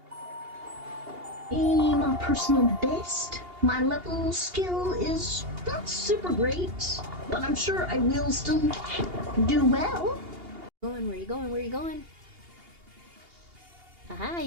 Hey, my personal best. My level skill is not super great, but I'm sure I will still do well. Where are you going? Where are you going? Haha,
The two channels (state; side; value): late; left; 2.8 ms